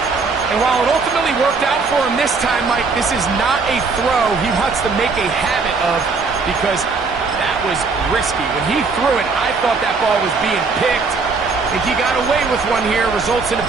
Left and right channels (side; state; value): left; quieter; 4.4 dB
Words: And while it ultimately worked out for him this time, Mike, this is not a throw he wants to make a habit of, because that was risky. When he threw it, I thought that ball was being picked. I think he got away with one here, results in a